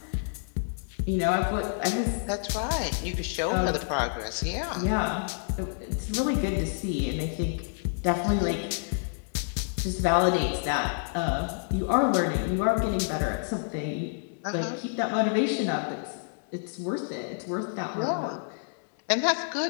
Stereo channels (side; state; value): right; silent; digital silence